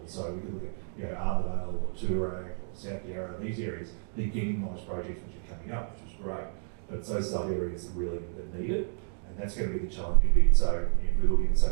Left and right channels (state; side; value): silent; left; 58 dB below the other